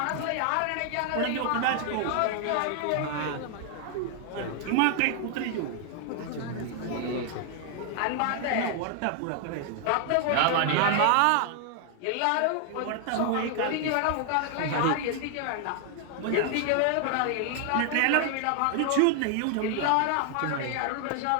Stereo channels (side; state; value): both; different; correlation 0.00